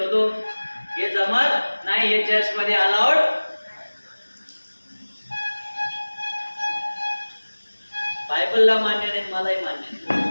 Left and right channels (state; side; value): inverted; both; correlation -1.00